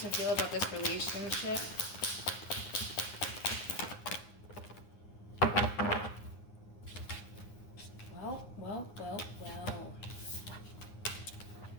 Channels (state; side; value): late; right; 9.7 ms